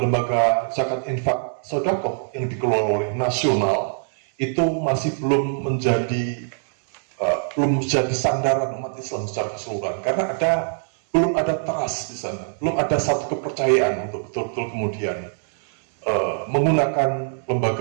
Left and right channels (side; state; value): left; silent; digital silence